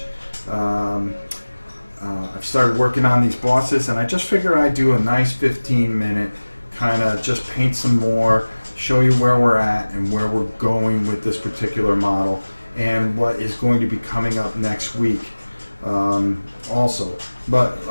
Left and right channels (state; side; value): inverted; both; correlation -1.00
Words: I've started working on these bosses, and I just figured I'd do a nice 15-minute kind of just paint some more, show you where we're at and where we're going with this particular model and what is going to be coming up next week also. But